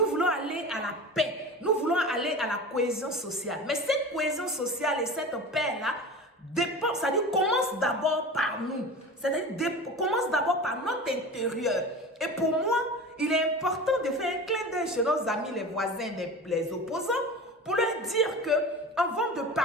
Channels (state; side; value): normal; both; correlation 0.33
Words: voulons aller à la paix. Nous voulons aller à la cohésion sociale. Mais cette cohésion sociale et cette paix-là dépend, c'est-à-dire commence d'abord par nous. C'est-à-dire commence d'abord par notre intérieur. Et pour moi, il est important de faire un clin d'œil chez nos amis, les voisins, les opposants, pour leur dire que avant de